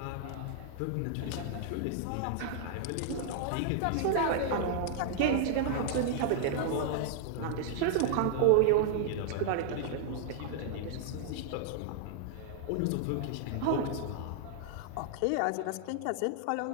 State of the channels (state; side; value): different; both; correlation -0.01